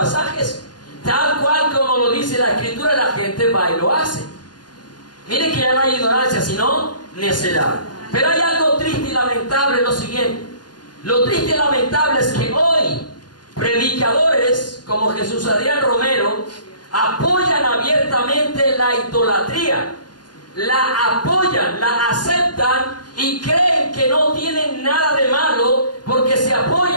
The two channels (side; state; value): right; late; 0.70 ms